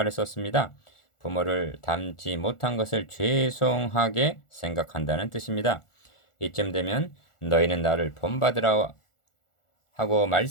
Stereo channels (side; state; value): right; late; 1.4 ms